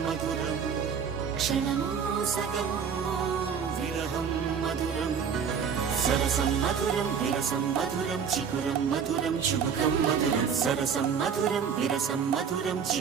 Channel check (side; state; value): left; quieter; 6.9 dB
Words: మధురం క్షణము సగము విరహం మధురం సరసం మధురం విరసం మధురం చికురం మధురం చుబుకం మధురం సరసం మధురం విరసం మధురం